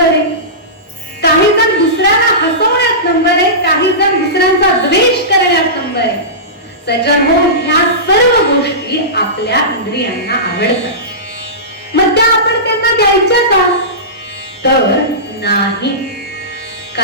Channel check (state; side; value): normal; both; correlation -0.20